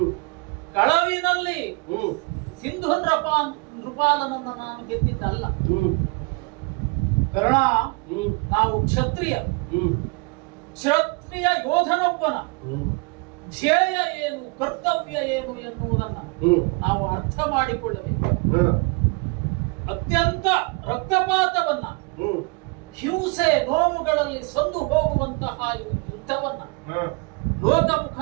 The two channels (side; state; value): left; quieter; 30.6 dB